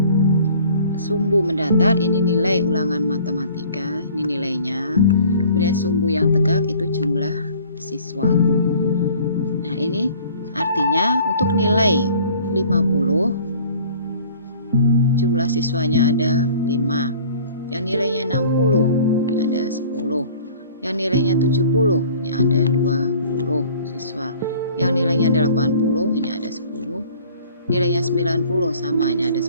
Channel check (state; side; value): inverted; both; correlation -0.50